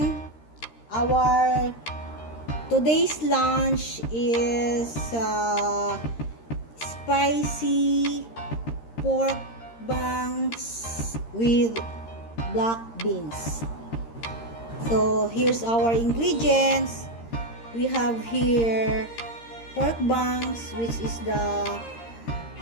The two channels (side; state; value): right; late; 13 ms